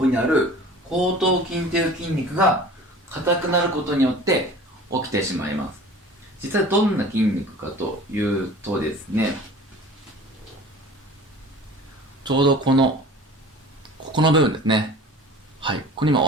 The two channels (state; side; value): normal; both; correlation 0.42